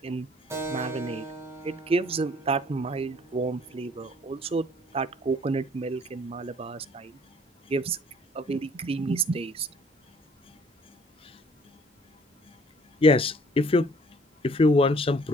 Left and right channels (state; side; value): normal; both; correlation 0.57